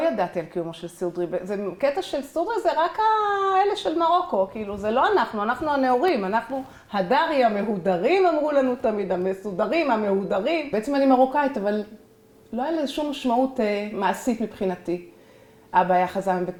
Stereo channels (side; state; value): both; identical; correlation 1.00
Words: ידעתי על קיומו של סודרי. זה קטע של סודרי, זה רק האלה של מרוקו, כאילו, זה לא אנחנו הנאורים, אנחנו הדרי המהודרים, אמרו לנו תמיד, המסודרים, המהודרים. בעצם אני מרוקאית, אבל לא היה לזה שום משמעות מעשית מבחינתי. אבא היה חזן